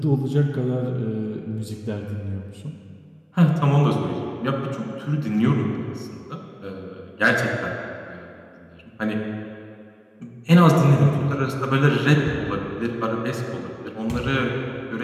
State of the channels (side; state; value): both; identical; correlation 1.00